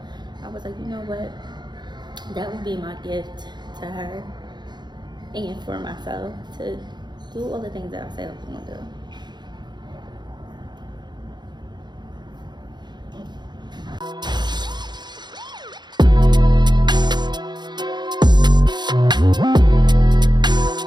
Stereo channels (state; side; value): late; left; 0.21 ms